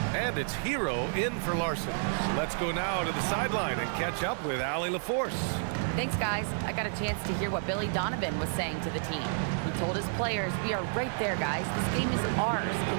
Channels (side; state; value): left; silent; 58 dB below the other